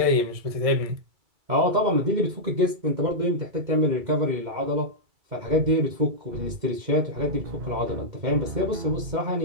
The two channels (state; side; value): late; left; 2.3 ms